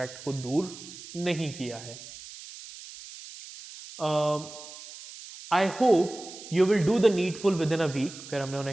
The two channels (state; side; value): noise; right; hiss, 15 dB below the sound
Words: को दूर नहीं किया है। I hope you will do the needful within a week. फिर हमने